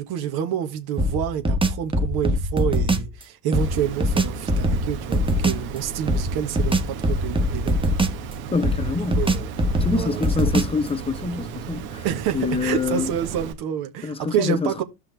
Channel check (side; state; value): both; normal; correlation 0.48